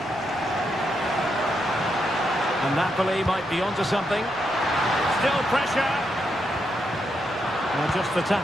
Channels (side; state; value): both; normal; correlation 0.81